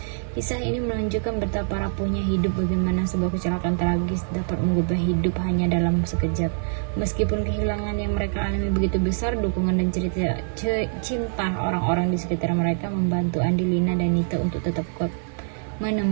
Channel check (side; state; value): left; silent; 62 dB below the other